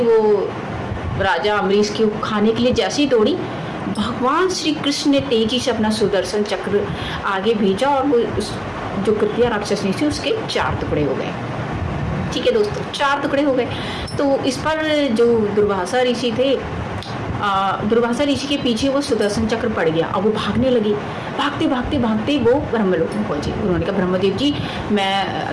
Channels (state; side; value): identical; both; correlation 1.00